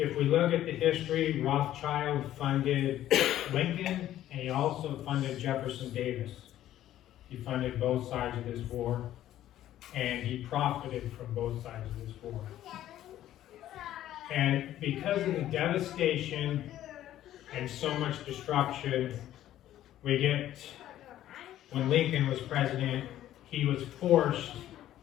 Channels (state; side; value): quieter; right; 12.7 dB